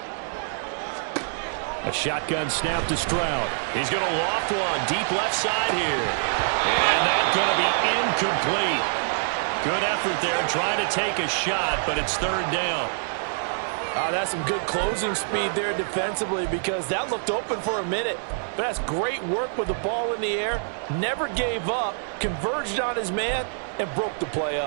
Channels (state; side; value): silent; left; 59 dB below the other